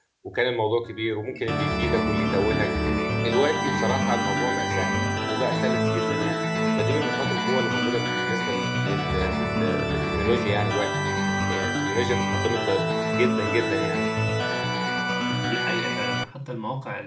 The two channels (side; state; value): both; identical; correlation 1.00